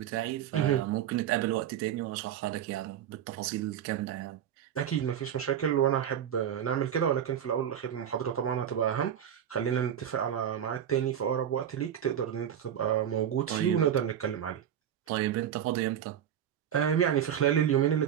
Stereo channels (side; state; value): left; quieter; 9.7 dB